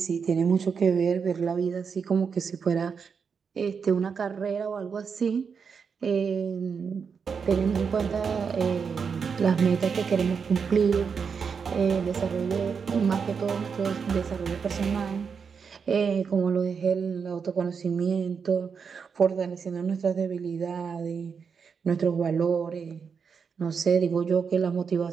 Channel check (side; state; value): left; quieter; 6.1 dB